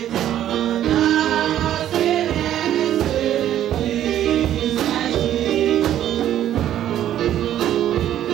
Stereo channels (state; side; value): quieter; left; 11.6 dB